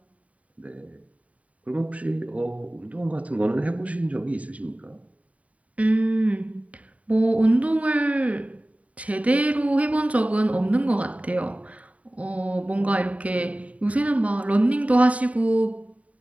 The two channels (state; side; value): late; left; 0.068 ms